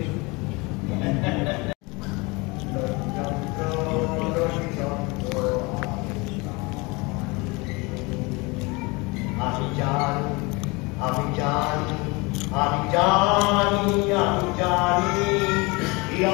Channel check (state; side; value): quieter; right; 26.3 dB